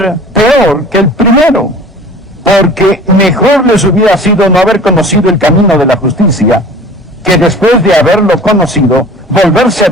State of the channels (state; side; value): normal; both; correlation 0.44